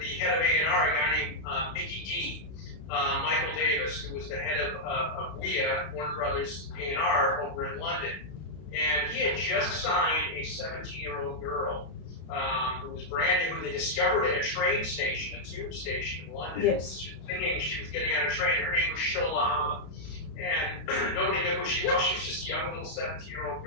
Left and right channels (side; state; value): right; late; 32 ms